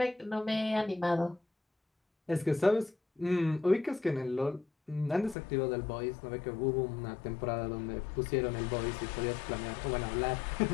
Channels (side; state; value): right; drops out; at 5.4 s